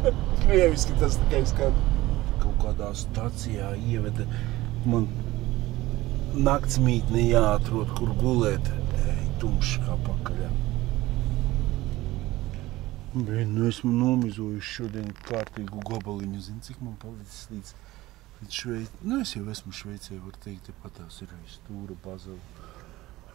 Krieviski tas tikai skan. Kaut kādā stacijā ieveda man naktsmītni jāatrod, kur gulēt. Tumšs kā pakaļā. Bet, esmu nomizojuši šodien kārtīgu gabaliņu. Zini, cik man palicis līdz Šveicē. Es jau esmu Šveicē, var teikt, patās ir stūra bazela.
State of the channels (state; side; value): quieter; left; 17.9 dB